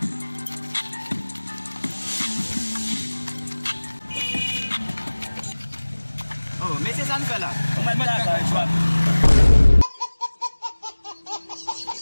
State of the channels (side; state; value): both; inverted; correlation -1.00